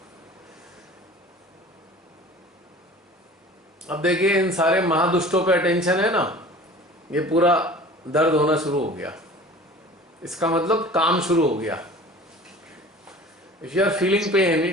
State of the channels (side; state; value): both; normal; correlation 0.43